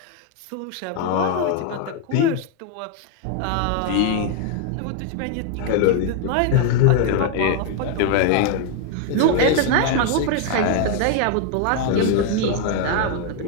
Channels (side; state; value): both; different; correlation 0.01